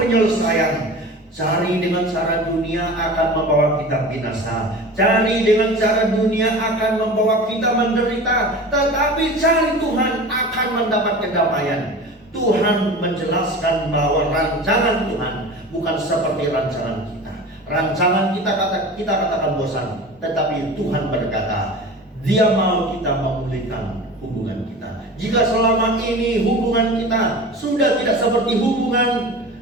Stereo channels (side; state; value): both; normal; correlation 0.35